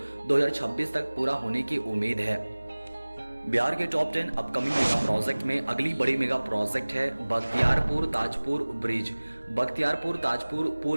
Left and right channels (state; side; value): inverted; both; correlation -1.00